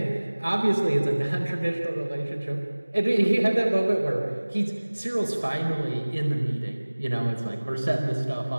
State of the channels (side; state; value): both; inverted; correlation -1.00